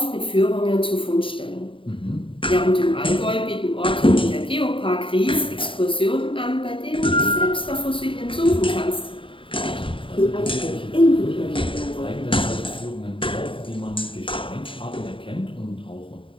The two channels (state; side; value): late; right; 0.25 ms